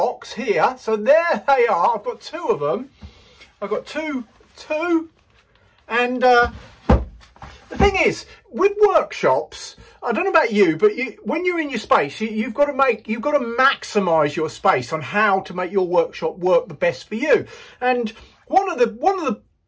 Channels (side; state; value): both; identical; correlation 1.00